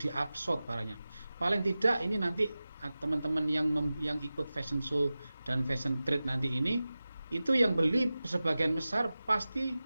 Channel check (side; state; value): both; inverted; correlation -0.96